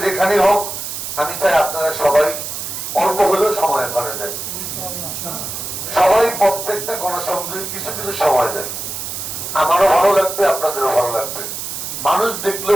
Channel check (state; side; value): noise; right; hiss, 6 dB below the sound